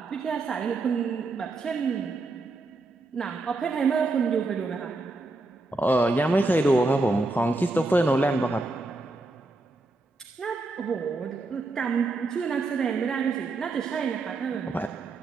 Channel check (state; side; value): quieter; left; 3.2 dB